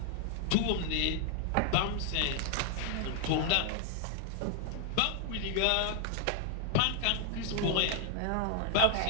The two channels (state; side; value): different; both; correlation 0.00